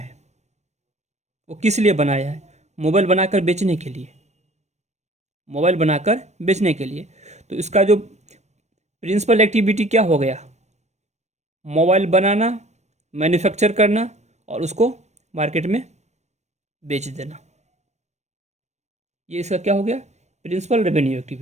वो किस लिए बनाया है, मोबाइल बनाकर बेचने के लिए, मोबाइल बनाकर बेचने के लिए। तो इसका जो प्रिंसिपल एक्टिविटी क्या हो गया, मोबाइल बनाना, मैन्युफैक्चर करना और उसको मार्केट में बेच देना। ये इसका क्या हो गया, प्रिंसिपल रेवेन्यू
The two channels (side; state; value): left; late; 0.33 ms